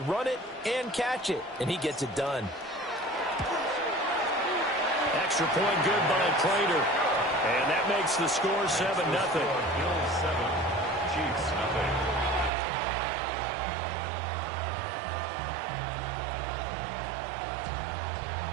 run it, and catch it. And he gets it done. Extra point good by Prater. And that makes the score 7-0. Bills 7, Chiefs nothing.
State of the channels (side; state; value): left; drops out; at 12.5 s